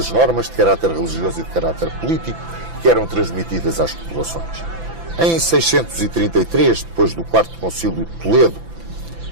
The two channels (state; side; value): late; left; 5.9 ms